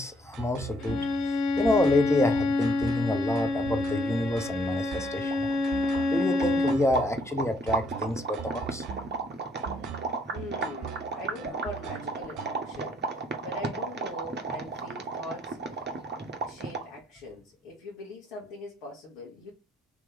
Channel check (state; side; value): normal; both; correlation 0.69